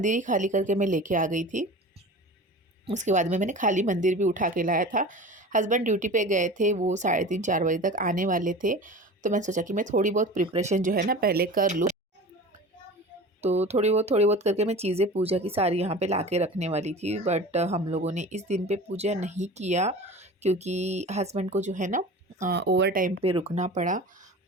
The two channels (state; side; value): normal; both; correlation 0.36